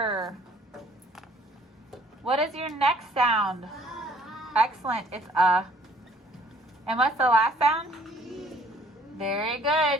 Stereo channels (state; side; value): normal; both; correlation 0.59